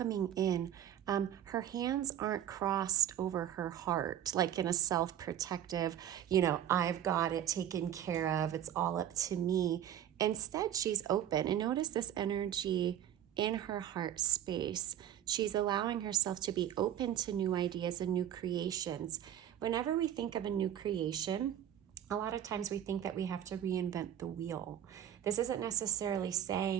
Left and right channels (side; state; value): left; quieter; 10.7 dB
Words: in. Her hands aren't crossed over her heart, like in a self-protective, I've got it taken care of, it's all up to me. Instead, she's open. And notice this energy in her heart space. She's allowing herself to be open to new ideas and new creations. Whenever we think of a new creation, a lot of times we think that we have to reinvent the wheel. This isn't necessarily